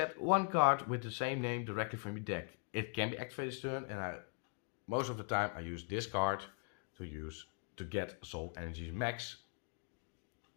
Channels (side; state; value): right; quieter; 38.9 dB